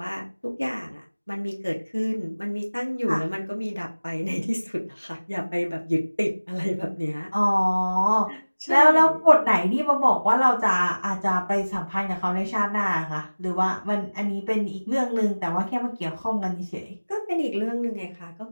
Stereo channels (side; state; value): both; inverted; correlation -1.00